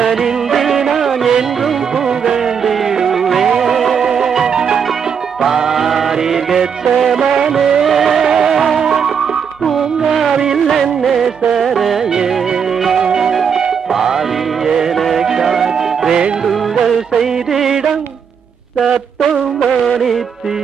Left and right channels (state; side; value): quieter; left; 7.0 dB